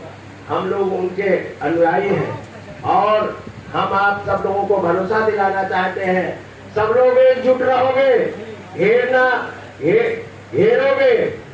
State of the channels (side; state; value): both; identical; correlation 1.00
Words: हम लोग उनके अनुयायी हैं। और हम आप सब लोगों को भरोसा दिलाना चाहते हैं, सब लोग एकजुट रहोगे, हेरोगे